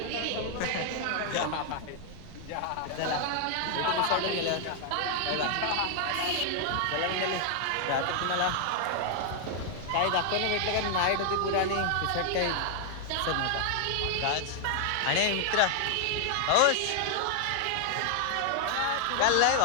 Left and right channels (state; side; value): different; both; correlation 0.00